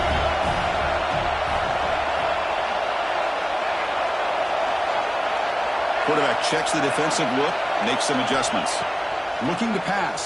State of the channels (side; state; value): both; identical; correlation 1.00